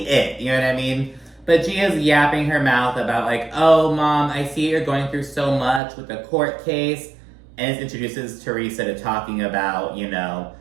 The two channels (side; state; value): left; drops out; at 5.8 s